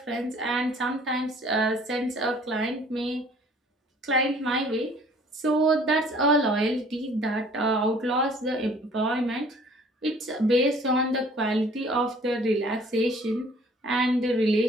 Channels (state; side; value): normal; both; correlation 0.54